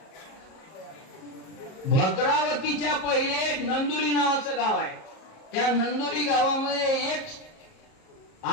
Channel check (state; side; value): late; right; 38 ms